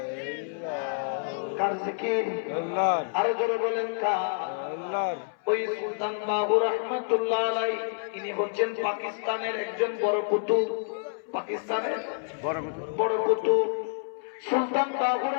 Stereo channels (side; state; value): right; silent; 59 dB below the other